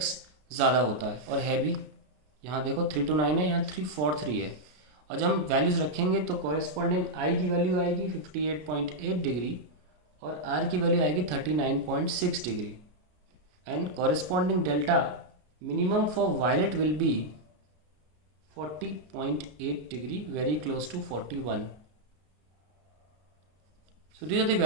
ज़्यादा होता है और है भी। यहाँ देखो 329 है, यहाँ 343 है, और जब हम वैल्यूज़ रखेंगे तो कॉरेस्पॉन्डिंग आई की वैल्यू आएगी 58.8 डिग्री और आर की वैल्यू आएगी 39.6 degree, and corresponding delta minimum for violet will be 40.8 degree, very close to 41. So these are the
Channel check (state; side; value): late; left; 33 ms